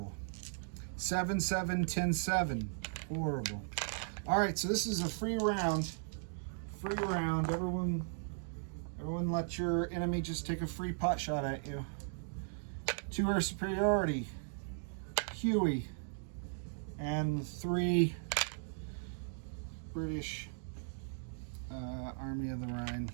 7, 7, 10, 7. Horrible. All right, so this is a free round. Free round. Everyone let your enemy just take a free pot shot at you. 2 air superiority. Huey and the 3 British Army of the Rhine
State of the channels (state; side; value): silent; left; digital silence